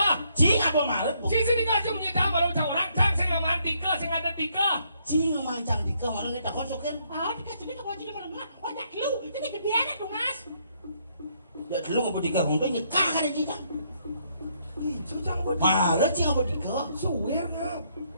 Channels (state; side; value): inverted; both; correlation -0.72